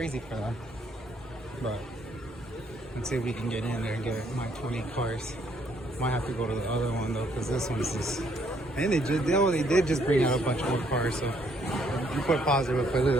for them. But let's see if we can get in there and get my 20 cars. Might have to go to the other one though, because this one's just. And they did just bring out a bunch more cars, so you put positive up.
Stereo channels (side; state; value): both; normal; correlation 0.68